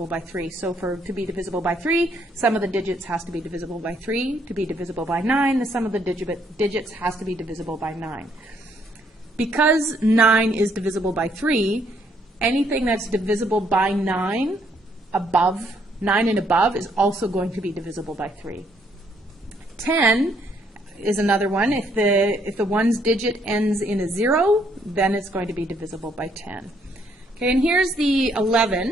by 3. So to be divisible by 3, sum of the digits has to be divisible by 3. To be divisible by 9, the sum of the digits has to be divisible by 9. Because 9 is divisible by 3, anything that's divisible by 9 and above is also going to be divisible by 3. 10 is another one. If the 1's digit ends in a 0, then it's going to be divisible by 10. Okay, and here's the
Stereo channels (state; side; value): normal; both; correlation 0.69